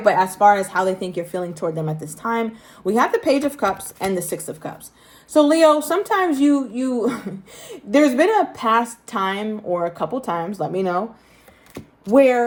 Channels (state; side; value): identical; both; correlation 1.00